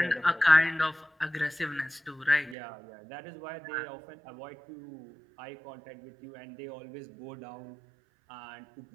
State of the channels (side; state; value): left; drops out; at 2.6 s